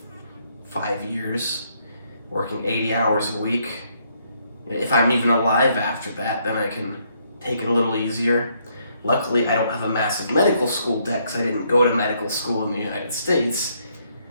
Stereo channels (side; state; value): both; inverted; correlation -0.72